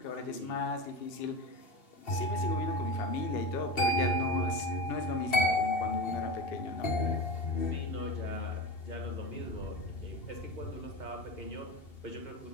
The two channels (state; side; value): late; right; 2.7 ms